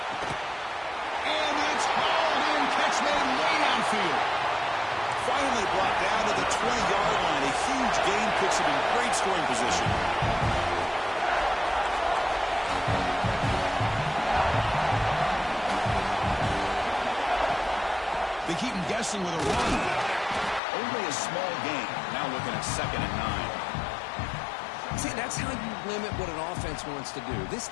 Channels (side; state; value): right; drops out; at 20.6 s